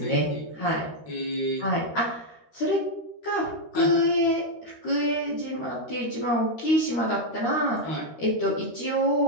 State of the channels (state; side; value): late; right; 13 ms